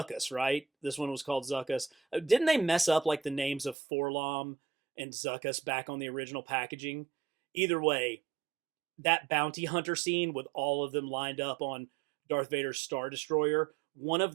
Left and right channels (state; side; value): drops out; left; at 3.8 s